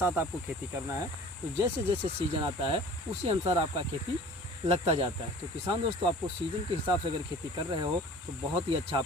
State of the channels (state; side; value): normal; both; correlation 0.45